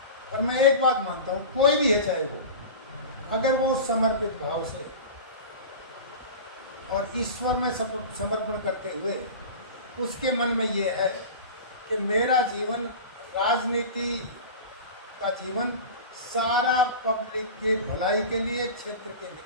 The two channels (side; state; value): both; inverted; correlation -0.32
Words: पर मैं एक बात मानता हूं, कोई भी है चाहे वो, अगर वो समर्पित भाव से और ईश्वर में समर्पण करते हुए उसके मन में ये है कि मेरा जीवन, राजनीति का जीवन सारा पब्लिक के भलाई के लिए, क्षेत्र के